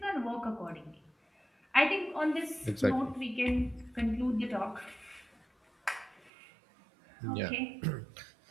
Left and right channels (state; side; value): drops out; left; at 6.3 s